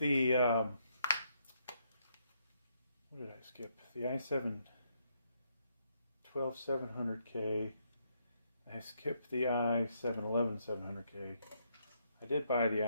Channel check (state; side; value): inverted; both; correlation -0.75